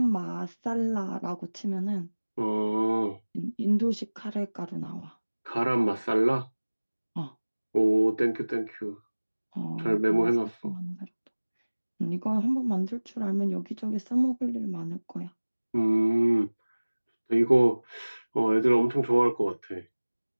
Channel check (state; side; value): inverted; both; correlation -1.00